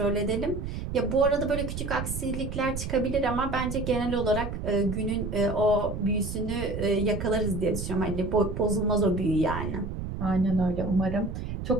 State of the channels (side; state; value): right; noise; rumble, 5 dB below the sound